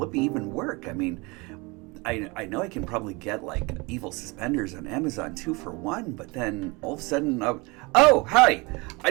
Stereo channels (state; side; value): quieter; left; 26.6 dB